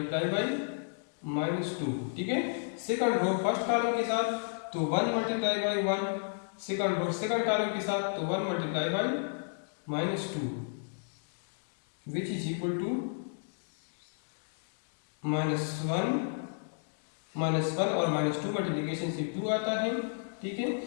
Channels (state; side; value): silent; right; digital silence